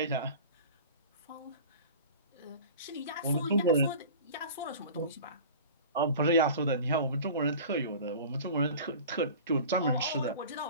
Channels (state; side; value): inverted; both; correlation -0.39